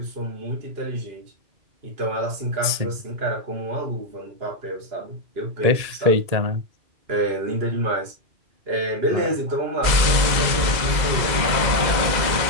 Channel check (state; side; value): late; left; 2.0 ms